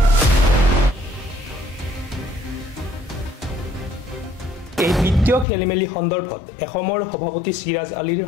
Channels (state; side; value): drops out; right; at 5.5 s